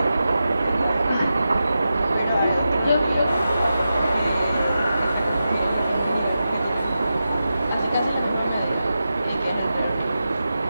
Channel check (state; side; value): inverted; both; correlation -0.91